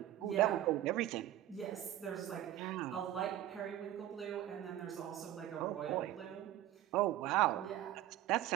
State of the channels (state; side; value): quieter; left; 13.4 dB